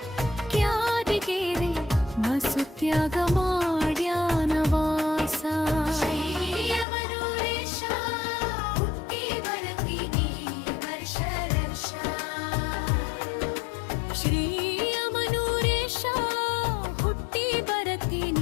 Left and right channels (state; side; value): drops out; right; at 6.9 s